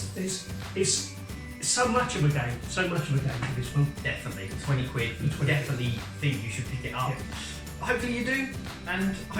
It's so much of a game. So much of a game for this one. Definitely. 20 quid. You definitely think you should pick it up. Yeah. Hopefully you do, and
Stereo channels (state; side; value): identical; both; correlation 1.00